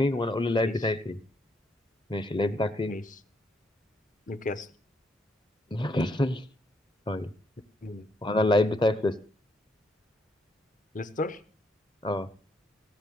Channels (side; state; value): both; normal; correlation 0.73